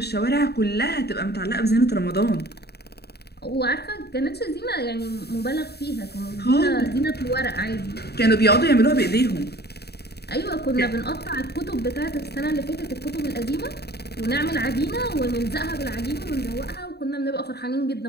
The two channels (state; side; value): late; right; 0.47 ms